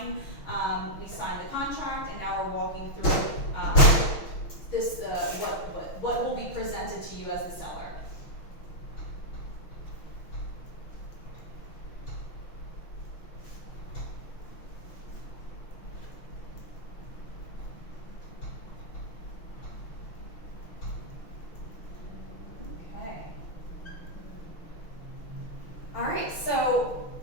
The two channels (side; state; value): right; late; 6.1 ms